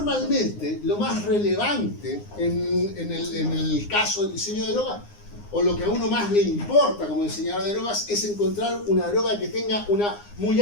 lo más relevante en el caso del diseño de drogas, o lo que a uno más le importa como diseñador de drogas, es encontrar una droga que tenga una muy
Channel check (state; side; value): late; right; 9.7 ms